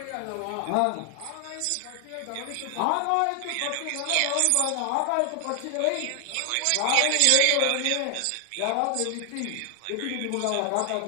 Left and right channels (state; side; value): different; both; correlation 0.00